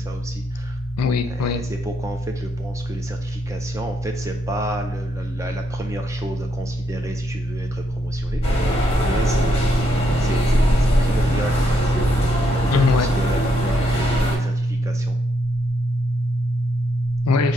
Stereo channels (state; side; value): normal; both; correlation 0.77